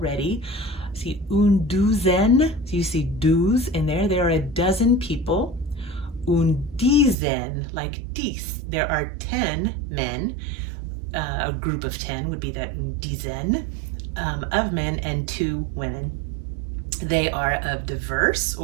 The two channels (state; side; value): drops out; left; at 7.2 s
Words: see, une douzaine, so you see douze in there, there are a dozen people. Une dizaine, like 10, there are 10 men, a group of 10 would be that une dizaine of men, and 2 women. They are of diverse